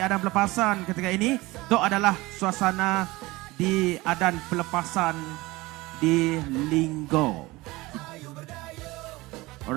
pelepasan ketika ini. Itu adalah suasana di adan pelepasan di Linggo.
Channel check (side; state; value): left; quieter; 21.0 dB